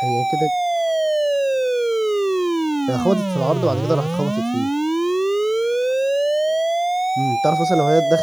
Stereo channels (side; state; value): left; noise; hiss, 29 dB below the sound